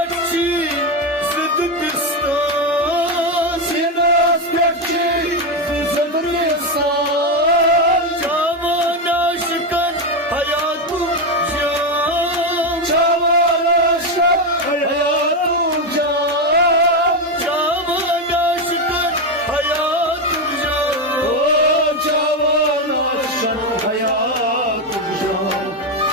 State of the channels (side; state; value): both; normal; correlation 0.10